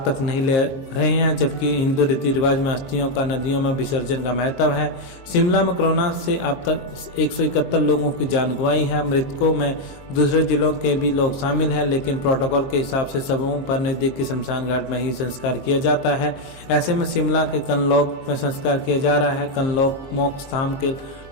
तक नहीं ले रहे हैं, जबकि हिंदू रीति रिवाज में अस्थियों का नदियों में विसर्जन का महत्व है। शिमला में कोरोना से अब तक 171 लोगों की जान गंवाई है। मृतकों में दूसरे जिलों के भी लोग शामिल हैं, लेकिन प्रोटोकॉल के हिसाब से सबों पर नजदीकी शमशान घाट में ही संस्कार किया जाता है। ऐसे में शिमला के कनलौक में संस्कार किया जा रहा है। कनलौक मोक्ष धाम के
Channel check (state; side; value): late; right; 23 ms